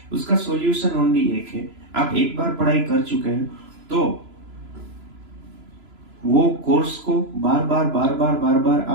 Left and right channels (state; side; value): late; left; 3.0 ms